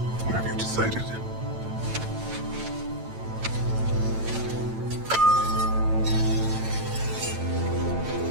what have you decided?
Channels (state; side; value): late; left; 8.9 ms